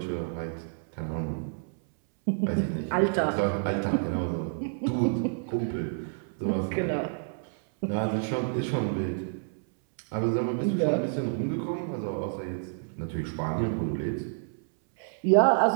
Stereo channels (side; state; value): left; silent; 59 dB below the other